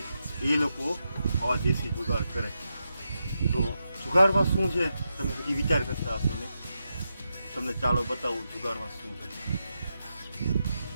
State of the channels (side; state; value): both; inverted; correlation -0.87